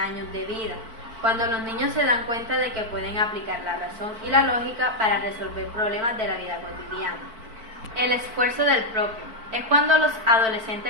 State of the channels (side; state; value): left; late; 4.5 ms